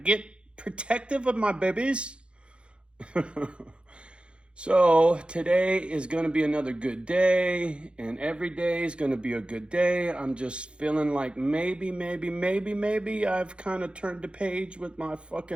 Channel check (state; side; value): late; left; 0.057 ms